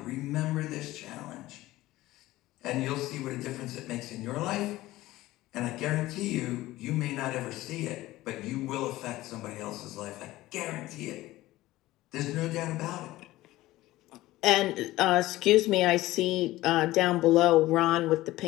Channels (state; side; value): quieter; right; 17.1 dB